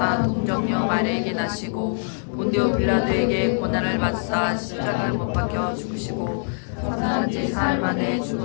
동정녀 마리아에게 나시고 본디오 빌라도에게 고난을 받사 십자가를 못 박혀 죽으시고 사흘 째 사흘 만에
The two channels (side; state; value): right; silent; digital silence